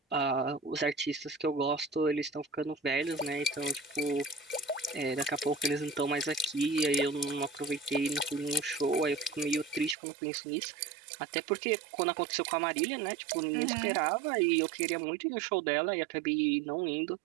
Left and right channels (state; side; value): drops out; left; at 10.0 s